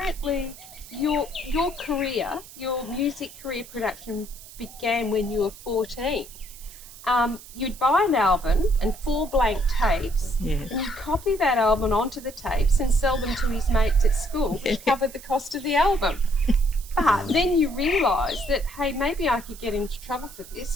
your career, your music career production began when you were 14. You'd buy an album and 4 blank tapes, Yeah. and you'd copy that album onto the tapes and sell them to his mates at school, which covered the cost of the album. But then you realise that, hey, maybe I could get into trouble for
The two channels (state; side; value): noise; right; hiss, 18 dB below the sound